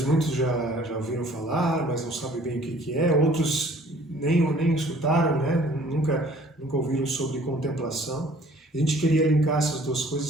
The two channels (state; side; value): normal; both; correlation 0.54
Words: muitos já ouviram falar, mas não sabem bem o que é. Outros nem escutaram, né? Nunca ouviram sobre contemplação. A gente queria linkar essas duas